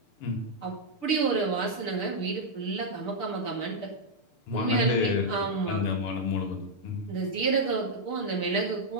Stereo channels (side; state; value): right; late; 6.7 ms